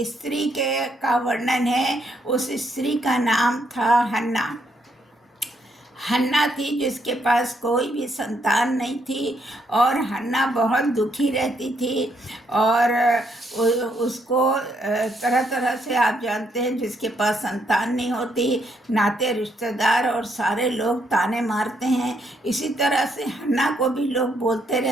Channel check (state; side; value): normal; both; correlation 0.74